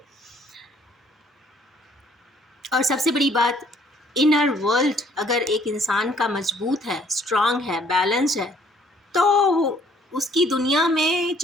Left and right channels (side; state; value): both; normal; correlation 0.61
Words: और सबसे बड़ी बात, इनर वर्ल्ड अगर एक इंसान का मजबूत है, स्ट्रांग है, बैलेंस है, तो उसकी दुनिया में